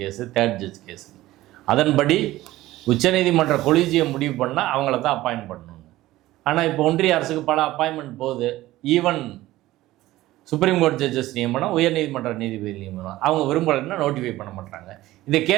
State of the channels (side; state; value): left; quieter; 16.5 dB